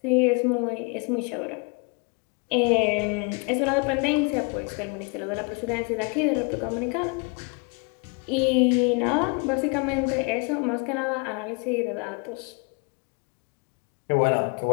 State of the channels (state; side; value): quieter; right; 33.2 dB